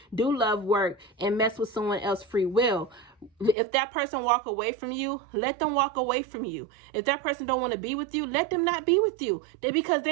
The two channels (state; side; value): drops out; left; at 3.6 s